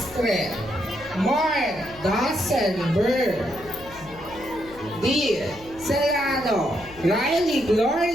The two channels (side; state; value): left; noise; hum, 21 dB below the sound